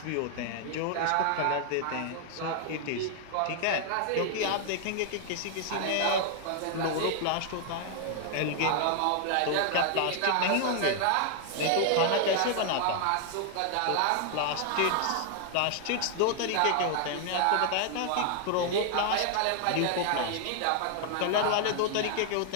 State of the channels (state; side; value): different; both; correlation 0.00